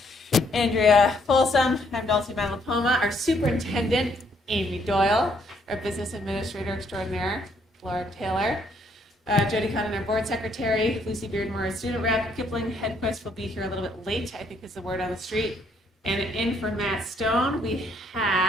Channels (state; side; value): normal; both; correlation 0.69